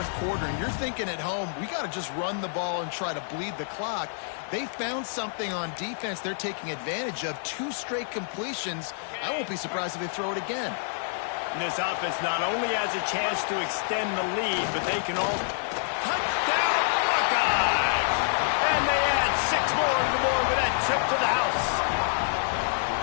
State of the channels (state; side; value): silent; right; digital silence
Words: quarter, and you're thinking at home, we got to just run the ball and try to bleed the clock. They found something on defense they're taking advantage of. 2 straight completions. I won't be surprised if they throw it again. And this offense not only has a chance to extend the lead, but they can all touchdown Buckeyes! And they add 6 more to the board with that trip to the house.